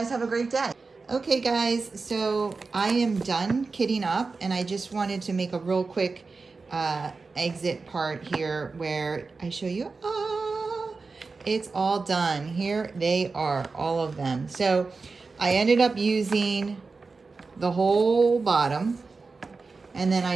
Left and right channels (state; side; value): quieter; left; 4.2 dB